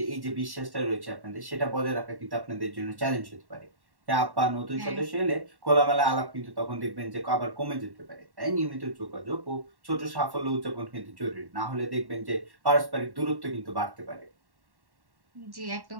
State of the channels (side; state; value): left; late; 1.1 ms